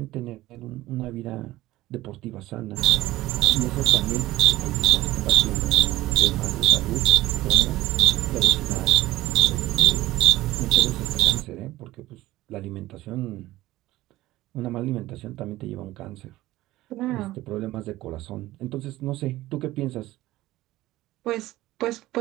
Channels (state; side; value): quieter; left; 16.8 dB